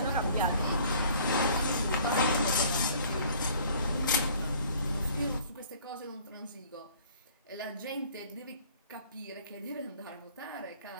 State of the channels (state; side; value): inverted; both; correlation -0.53